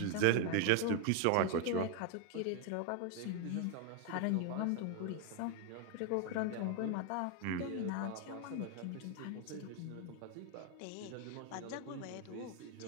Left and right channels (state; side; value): different; both; correlation 0.01